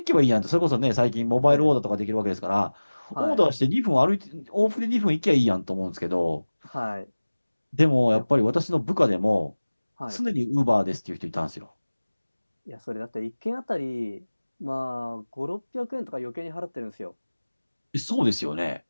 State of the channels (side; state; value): both; inverted; correlation -1.00